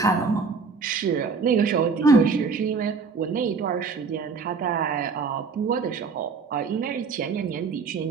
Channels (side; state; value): left; quieter; 5.0 dB